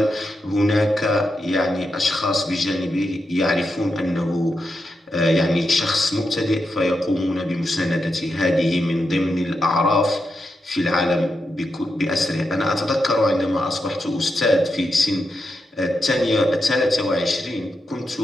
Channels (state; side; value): normal; both; correlation 0.86